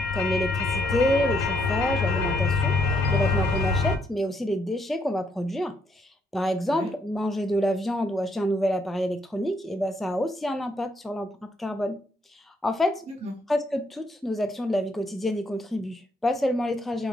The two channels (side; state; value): both; normal; correlation 0.73